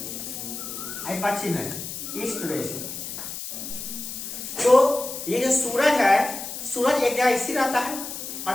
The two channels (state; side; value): noise; left; hiss, 8 dB below the sound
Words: ये पश्चिम है, ईस्ट वेस्ट। तो ये जो सूरज है, सूरज एक जगह स्थिर रहता है